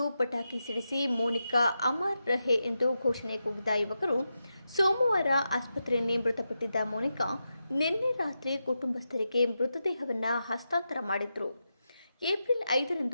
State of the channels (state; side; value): inverted; both; correlation -0.88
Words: ಪಟಾಕಿ ಸಿಡಿಸಿ ಮೋನಿಕಾ ಅಮರ್ ರಹೆ ಎಂದು ಘೋಷಣೆ ಕೂಗಿದ ಯುವಕರು ಸೋಮವಾರ ಆಸ್ಪತ್ರೆಯಲ್ಲಿ ಮೃತಪಟ್ಟಿದ್ದ ಮೋನಿಕಾ ನಿನ್ನೆ ರಾತ್ರಿ ಕುಟುಂಬಸ್ಥರಿಗೆ ಮೃತದೇಹವನ್ನು ಹಸ್ತಾಂತರ ಮಾಡಿದ್ರು. ಏಪ್ರಿಲ್